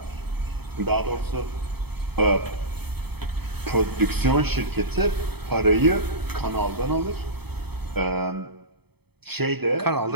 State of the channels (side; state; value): left; late; 0.97 ms